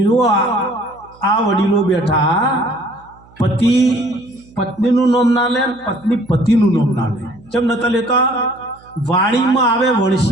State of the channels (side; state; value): right; noise; hum, 27 dB below the sound